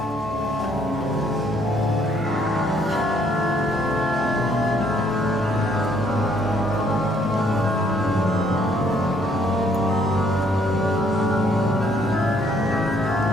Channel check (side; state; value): both; normal; correlation 0.66